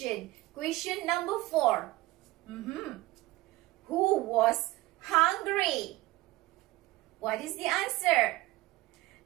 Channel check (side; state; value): left; quieter; 19.1 dB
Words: question number 4. Who was hungry? What is the answer?